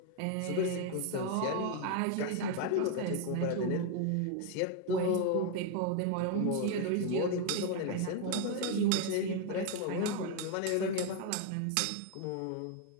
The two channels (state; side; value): different; both; correlation 0.01